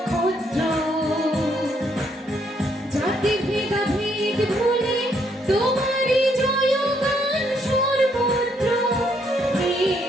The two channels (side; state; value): both; normal; correlation 0.72